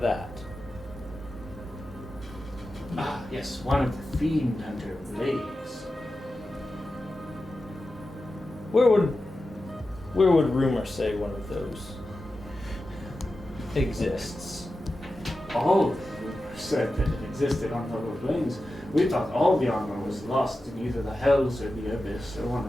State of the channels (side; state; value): both; normal; correlation 0.92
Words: Ah, yes, one of the fiend hunter blades. Where would rumor say one of those exists? All the rumors said that it existed on the lower plains. We thought all the armor was lost in either the hells or the abyss or one